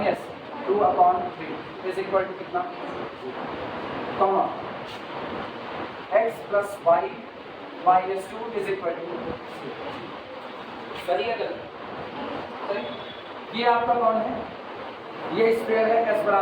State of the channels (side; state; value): both; identical; correlation 1.00